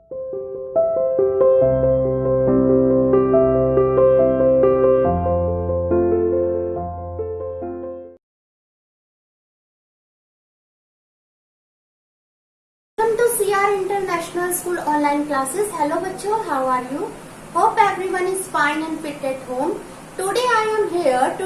Welcome to CR International School online classes. Hello बच्चों, how are you? Hope everyone is fine and fit at home. Today I am here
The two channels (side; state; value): both; identical; correlation 1.00